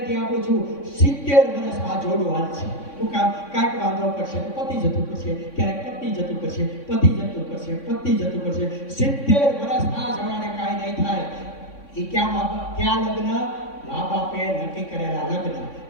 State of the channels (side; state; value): right; late; 3.6 ms